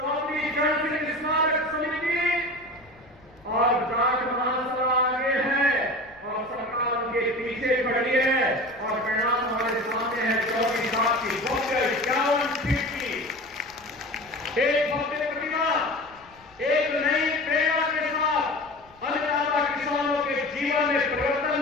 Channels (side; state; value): left; noise; rumble, 28 dB below the sound